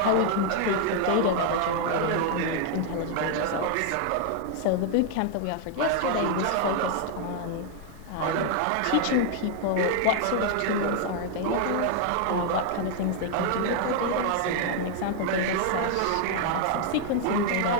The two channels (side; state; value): both; different; correlation 0.00